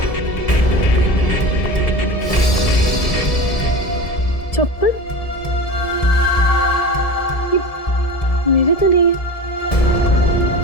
चप्पल? ये मेरे तो नहीं है।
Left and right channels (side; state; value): right; late; 1.7 ms